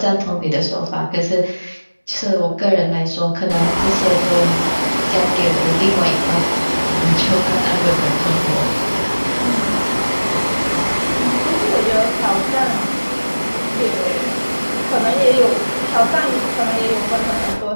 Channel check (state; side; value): inverted; both; correlation -1.00